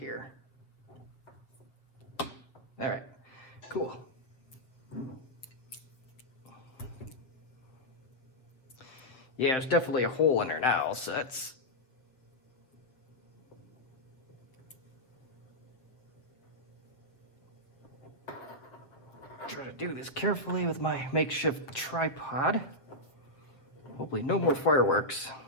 All right, cool. Yeah, there's definitely a hole in there now, so that's... Try to do this carefully with my makeshift tripod. Hopefully no more fireworks.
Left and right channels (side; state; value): right; late; 7.3 ms